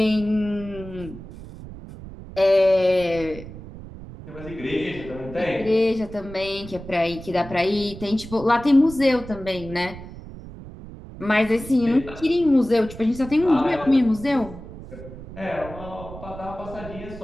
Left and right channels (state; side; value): noise; right; rumble, 14 dB below the sound